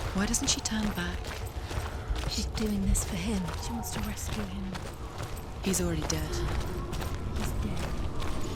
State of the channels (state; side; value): identical; both; correlation 1.00